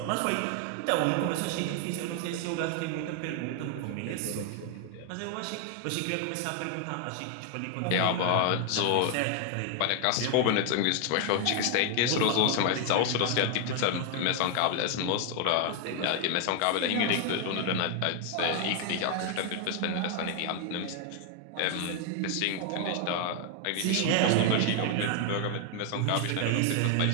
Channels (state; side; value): different; both; correlation 0.00